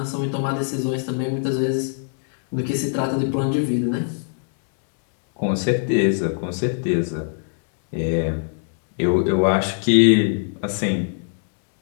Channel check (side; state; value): right; silent; digital silence